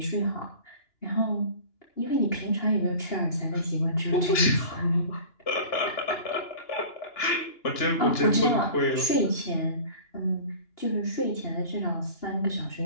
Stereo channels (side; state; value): right; late; 2.9 ms